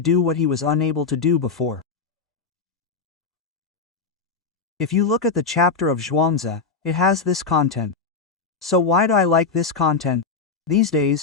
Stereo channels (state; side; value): quieter; right; 4.8 dB